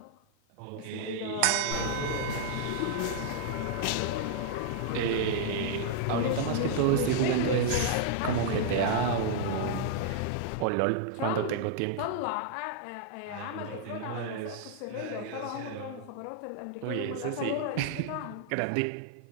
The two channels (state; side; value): different; both; correlation -0.01